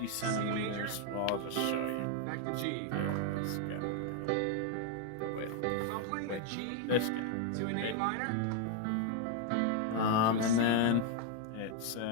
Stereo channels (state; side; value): different; both; correlation 0.00